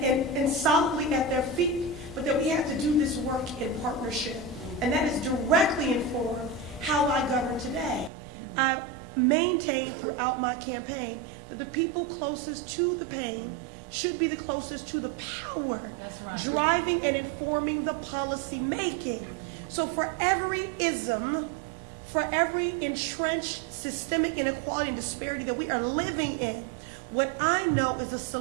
solidly at their feet, but that we have to do this work in partnership. And that has directly informed how I govern today. I maintained throughout my campaign that the people closest to the pain should be the closest to the power, driving and informing the policy making. So for every ism, for every entrenched systemic inequality and disparity that we are living in, what I know is the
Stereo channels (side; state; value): left; drops out; at 8.1 s